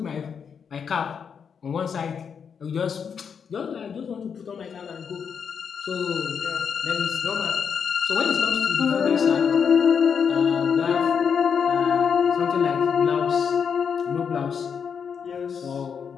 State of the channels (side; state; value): right; quieter; 6.8 dB